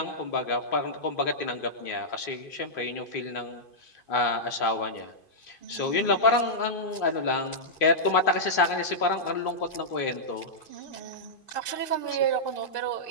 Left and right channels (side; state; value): right; late; 2.5 ms